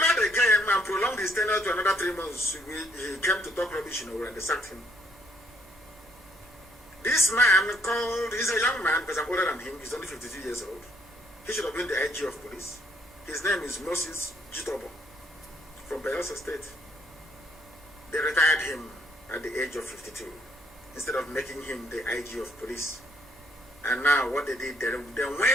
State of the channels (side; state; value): both; normal; correlation 0.68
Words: game and prolonged his tenure to another 3 months. He came to talk rubbish, you know, and they sacked him. This man he's a young man because I'm older than him. He's only 52 years old. He should have been the IG of police. His name is Moses Jitobo from Bayelsa State. They retired him at the age of 52 instead of making him the IG of police. And now what they did, they